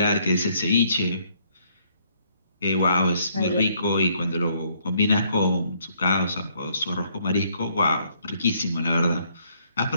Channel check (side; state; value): both; inverted; correlation -0.68